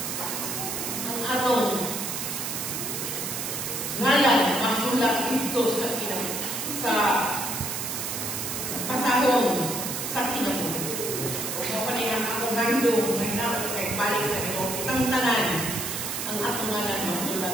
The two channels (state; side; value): noise; right; hiss, 3 dB below the sound